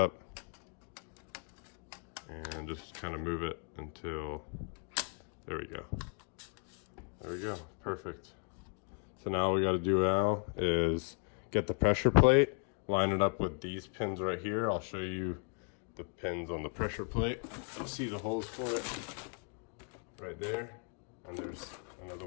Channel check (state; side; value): quieter; right; 39.5 dB